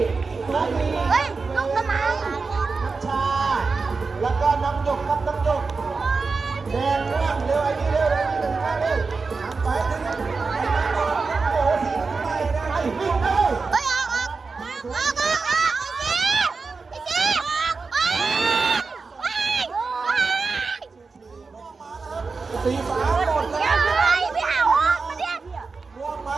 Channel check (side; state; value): left; quieter; 4.4 dB